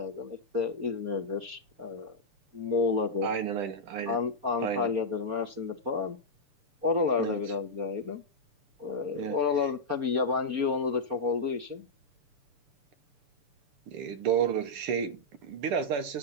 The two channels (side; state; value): left; late; 6.9 ms